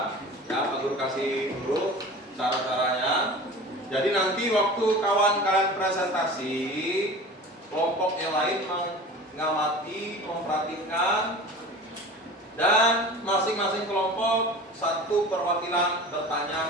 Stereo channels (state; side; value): normal; both; correlation 0.37